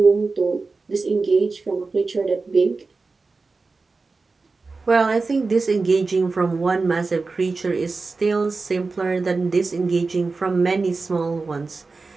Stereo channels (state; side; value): quieter; left; 4.0 dB